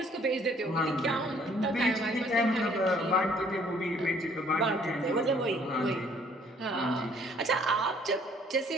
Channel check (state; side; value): normal; both; correlation 0.60